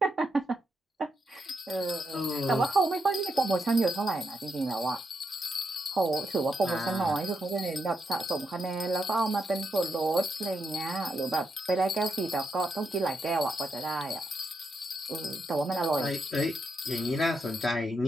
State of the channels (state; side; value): normal; both; correlation 0.82